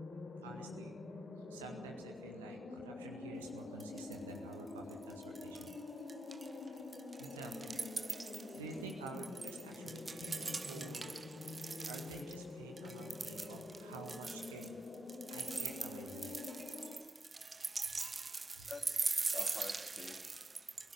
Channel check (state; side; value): normal; both; correlation 0.85